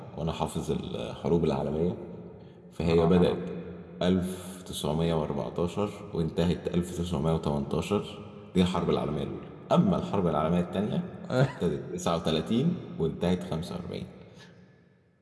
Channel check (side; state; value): both; identical; correlation 1.00